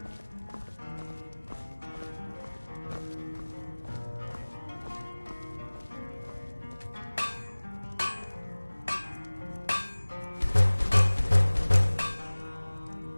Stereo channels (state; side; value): inverted; both; correlation -1.00